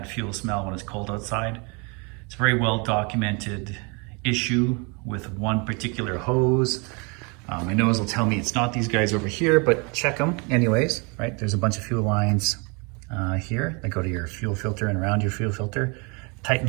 fuel smell when it's cold outside, it's a very well documented issue with one particular hose. My nose will tell me it's not these guys over here, but check them anyways, right? There's a bunch of fuel lines here that go to your fuel filter and around your fuel filter. Tighten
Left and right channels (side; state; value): left; quieter; 31.5 dB